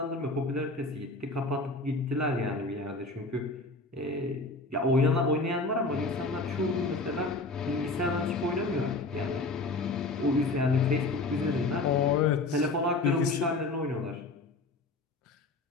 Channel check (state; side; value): quieter; right; 3.2 dB